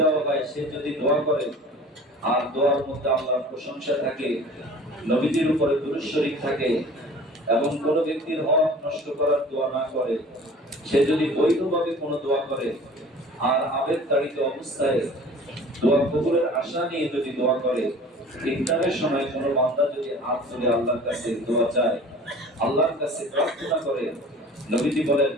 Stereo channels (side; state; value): both; normal; correlation 0.44